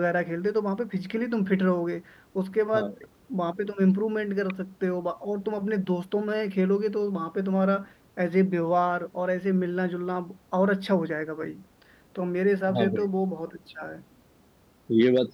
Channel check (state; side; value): identical; both; correlation 1.00